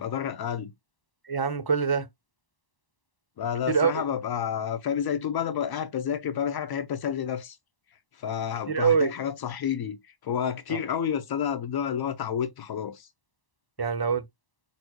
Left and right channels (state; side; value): late; right; 1.0 ms